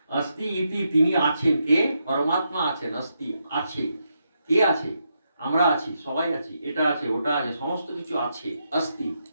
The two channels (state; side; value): inverted; both; correlation -0.82